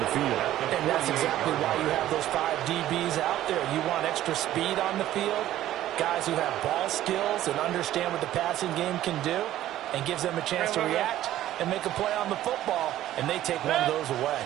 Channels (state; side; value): quieter; left; 13.4 dB